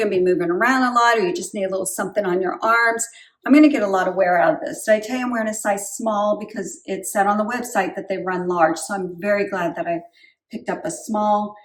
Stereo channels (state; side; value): identical; both; correlation 1.00